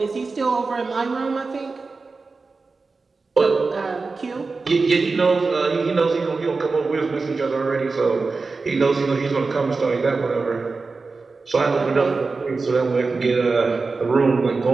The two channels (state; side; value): quieter; left; 4.1 dB